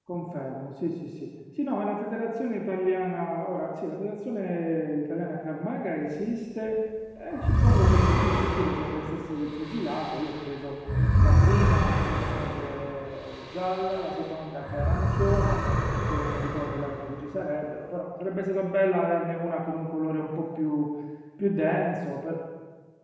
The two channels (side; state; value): both; identical; correlation 1.00